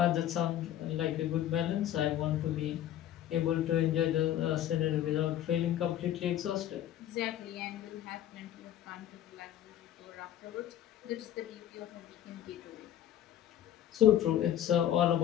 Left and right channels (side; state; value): right; quieter; 11.7 dB